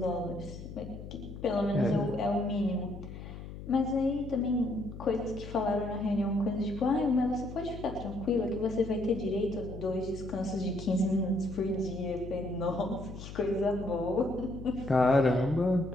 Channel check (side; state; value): left; noise; hum, 11 dB below the sound